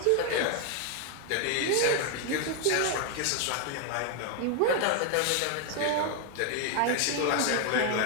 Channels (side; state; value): both; different; correlation 0.00